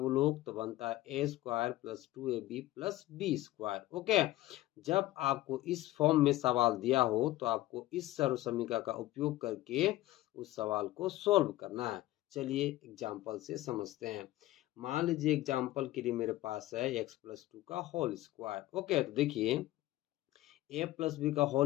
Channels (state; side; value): quieter; right; 16.3 dB